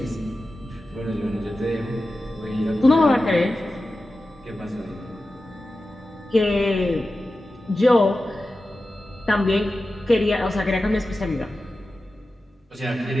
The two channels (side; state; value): both; normal; correlation 0.94